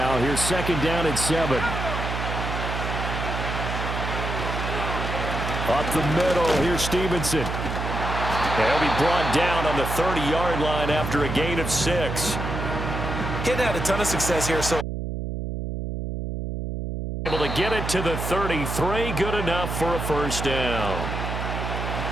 here's second down at 7. Up the middle, here's Stevenson. He'll be brought down on the 30-yard line after a gain of 6. Getting had a ton of success here, so able to get it to the 33, good enough for a first down.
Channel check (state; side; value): noise; right; hum, 4 dB below the sound